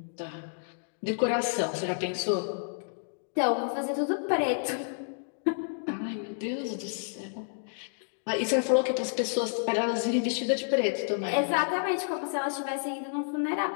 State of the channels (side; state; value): right; silent; digital silence